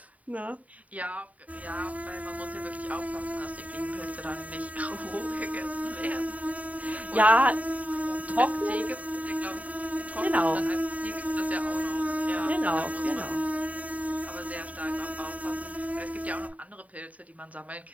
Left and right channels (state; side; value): late; left; 0.070 ms